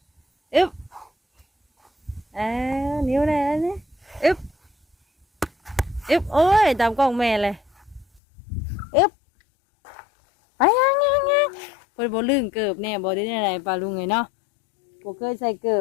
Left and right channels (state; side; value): drops out; right; at 8.2 s